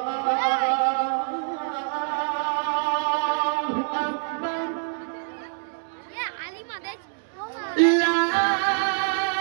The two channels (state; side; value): silent; left; 58 dB below the other